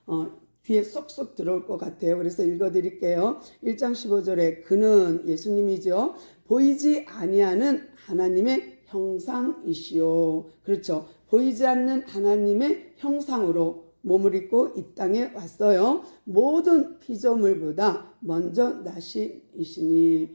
귀에 쏙쏙 들어올 것 같아요. 그래서 읽어드릴게요. 1장 15절에 그는 예수님이죠. 보이지 아니하는 하나님의 형상이시요. 그렇죠. 보이지 않는 하나님의 형상으로 몸을 입고 이 땅에 왔어요. 모든 피조물보다 먼저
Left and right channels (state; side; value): inverted; both; correlation -1.00